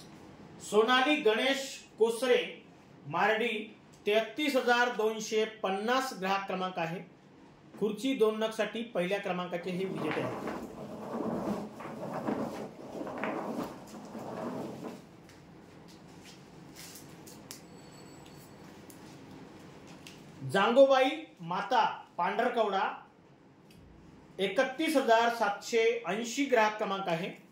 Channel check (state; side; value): identical; both; correlation 1.00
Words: सोनाली गणेश कोसरे मार्डी 33,250 ग्राहक क्रमांक आहे। खुर्ची 2 नग साठी पहिल्या क्रमांकाचे हे विजेते आहेत। जांगोबाई माता पांढरकवडा 31,780 ग्राहक क्रमांक आहे।